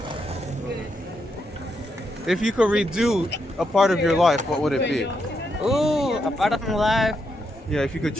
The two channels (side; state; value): both; normal; correlation 0.80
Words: If you could redo a part of your life, what would it be? Ooh, a part of my life. Yeah, if you could